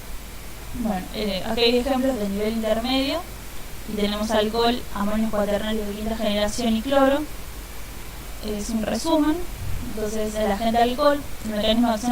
Bueno, aquí hay ejemplos del nivel intermedio y tenemos alcohol, amonio cuaternario de quinta generación y cloro. Es un resumen. Entonces el agente alcohol, el mecanismo de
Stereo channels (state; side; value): identical; both; correlation 1.00